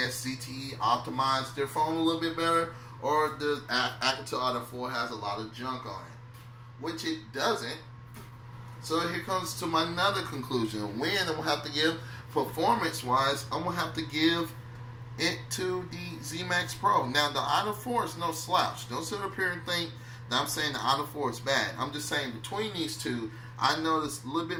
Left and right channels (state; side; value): identical; both; correlation 1.00